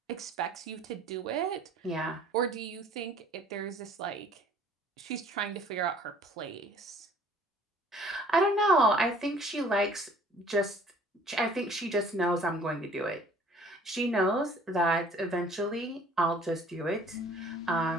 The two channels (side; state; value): both; normal; correlation 0.54